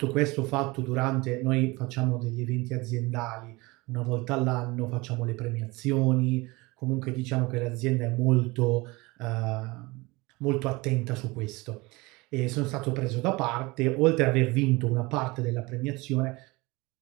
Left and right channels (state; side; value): quieter; left; 23.6 dB